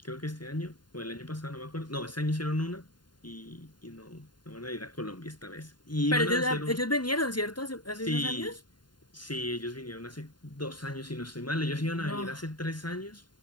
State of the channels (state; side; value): late; right; 0.71 ms